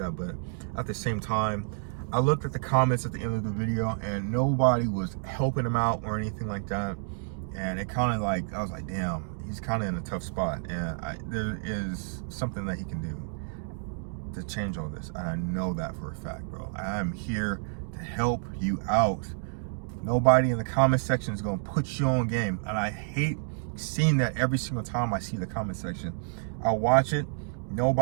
but at the same time, I looked at the comments at the end of the video and nobody was helping him out or anything like that. And it kind of like, I was like, damn, he's kind of in a tough spot. And there is something that he can do to change all this. And I know that for a fact, bro. I'm here to help you out. Nobody in the comment section is going to put you on game. And I hate seeing that every single time I see the comment section. I watch it.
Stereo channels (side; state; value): left; silent; digital silence